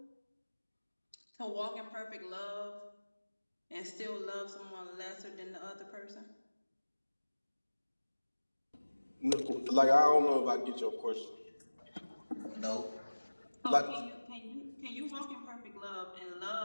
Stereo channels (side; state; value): both; inverted; correlation -1.00